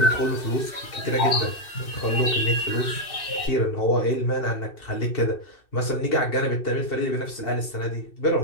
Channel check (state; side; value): late; right; 2.6 ms